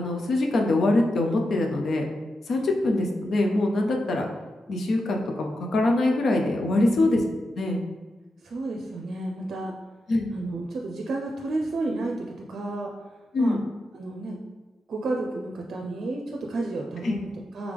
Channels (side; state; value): both; normal; correlation 0.87